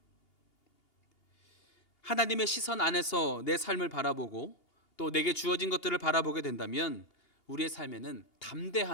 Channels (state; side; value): late; right; 2.8 ms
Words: 하나님의 시선 안에서 내 삶을 바라보고 또 내게 주어진 것들을 바라보게 된다면 우리의 삶에는